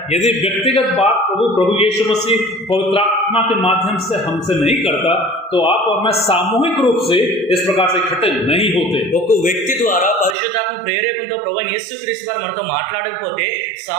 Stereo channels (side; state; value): left; drops out; at 10.4 s